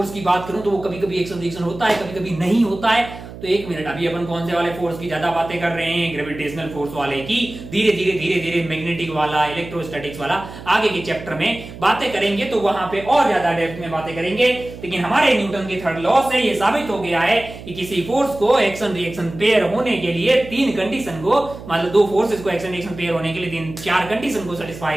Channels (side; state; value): right; noise; hum, 14 dB below the sound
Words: की बात करूं तो वो कभी कभी एक्शन रिएक्शन होता है, कभी कभी नहीं होता है। तो एक मिनट, अभी अपन कौन से वाले फोर्स की ज्यादा बातें कर रहे हैं, ग्रेविटेशनल फोर्स वाले की। धीरे धीरे मैग्नेटिक वाला, इलेक्ट्रोस्टैटिक्स वाला आगे के चैप्टर में बातें करेंगे, तो वहां पे और ज्यादा डेप्थ में बातें करेंगे। लेकिन हमारे न्यूटन के थर्ड लॉ से ये साबित हो गया है कि किसी फोर्स को एक्शन रिएक्शन पेयर होने के लिए तीन कंडीशन को, मतलब दो फोर्सेस को एक्शन रिएक्शन पेयर होने के लिए तीन चार कंडीशन को